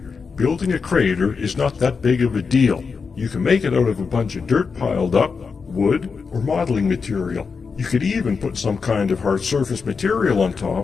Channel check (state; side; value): quieter; right; 5.2 dB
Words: Building a crater is not that big of a deal. You can make it out of a bunch of dirt piled up, wood, or modeling material. You could even put some kind of hard surface material on